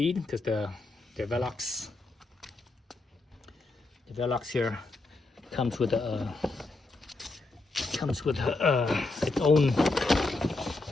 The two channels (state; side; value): quieter; right; 3.2 dB